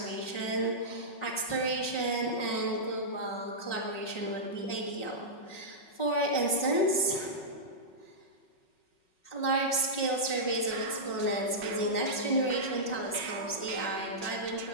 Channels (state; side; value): late; right; 5.4 ms